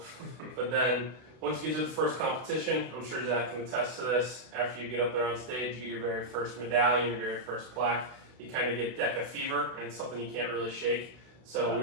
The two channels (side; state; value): left; late; 32 ms